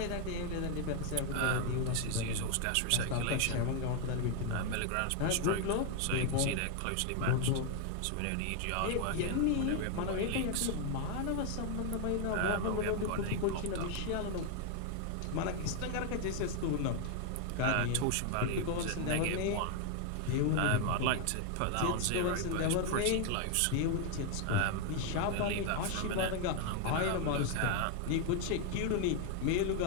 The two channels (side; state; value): both; different; correlation 0.00